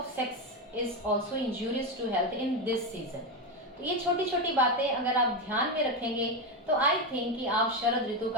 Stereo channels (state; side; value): normal; both; correlation 0.11